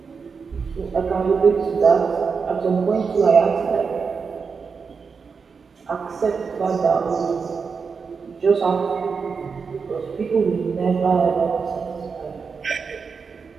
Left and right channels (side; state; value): left; quieter; 5.4 dB